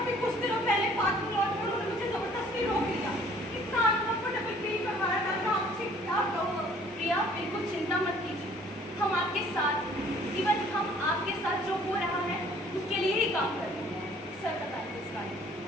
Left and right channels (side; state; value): both; normal; correlation 0.56